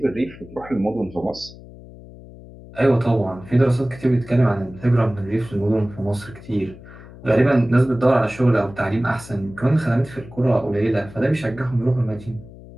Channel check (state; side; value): noise; left; hum, 18 dB below the sound